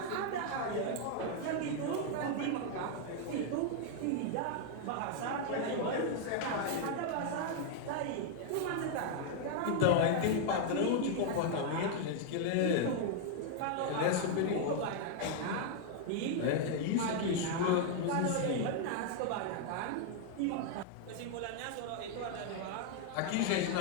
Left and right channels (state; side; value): different; both; correlation 0.00